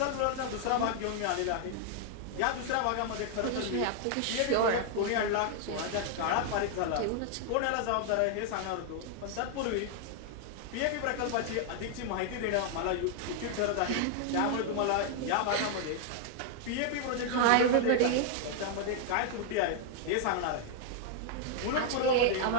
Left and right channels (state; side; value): different; both; correlation 0.00